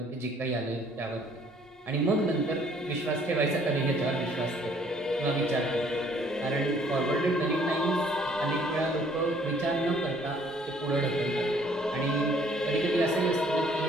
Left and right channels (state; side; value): normal; both; correlation 0.60